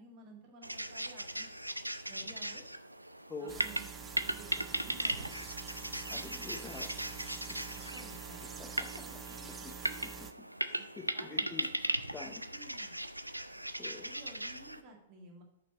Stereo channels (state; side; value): inverted; both; correlation -0.78